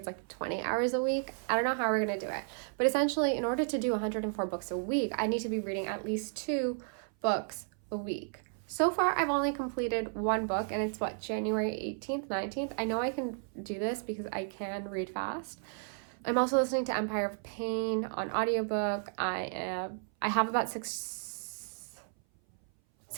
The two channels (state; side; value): silent; left; 56 dB below the other